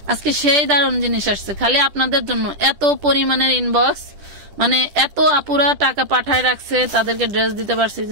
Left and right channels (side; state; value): left; late; 10 ms